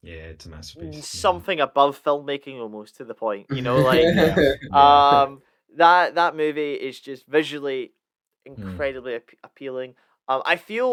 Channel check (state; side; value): identical; both; correlation 1.00